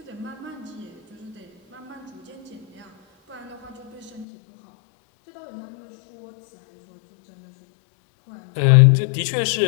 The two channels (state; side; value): drops out; right; at 4.2 s